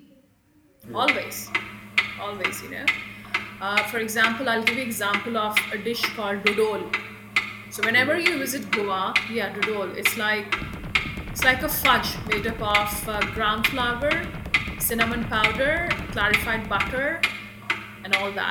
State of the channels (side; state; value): both; identical; correlation 1.00